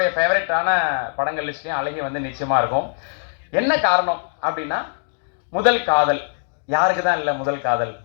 ஃபேவரட்டான படங்கள் லிஸ்ட்லேயும் அழகி வந்து நிச்சயமாக இருக்கும். என்ன காரணம் அப்படின்னா, முதல் காதல் யாருக்கு தான் இல்லை முதல் காதல்.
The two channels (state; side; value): silent; right; digital silence